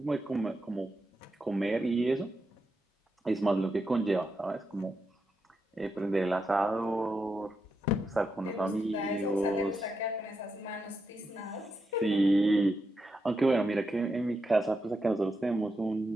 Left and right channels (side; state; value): both; normal; correlation 0.85